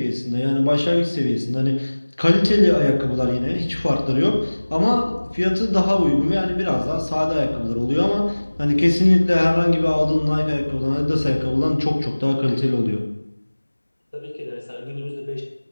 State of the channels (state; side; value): inverted; both; correlation -1.00